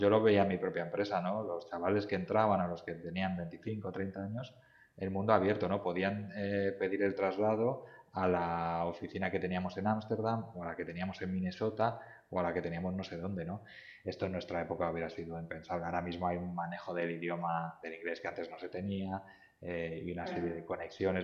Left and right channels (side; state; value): both; identical; correlation 1.00